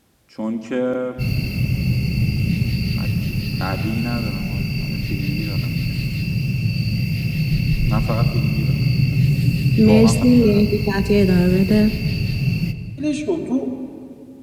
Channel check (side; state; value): both; identical; correlation 1.00